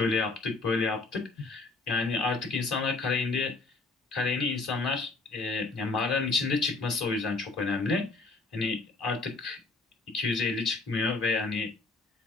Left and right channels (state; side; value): quieter; right; 3.7 dB